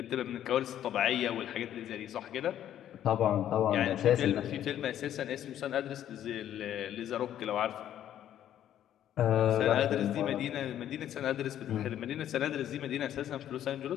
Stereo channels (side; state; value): right; quieter; 11.1 dB